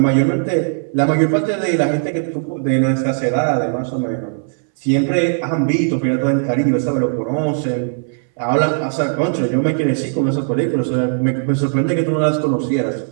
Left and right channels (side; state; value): left; silent; 64 dB below the other